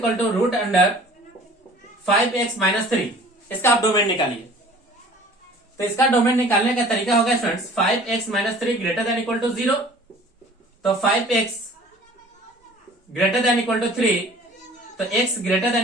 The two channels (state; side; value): normal; both; correlation 0.48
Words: to root under 5x minus 3, इसका आप डोमेन निकालिए। तो इसका डोमेन निकालने का तरीका होगा students 5x minus 3 greater than equal to 0, तो 5x greater than equal to 3, तो x greater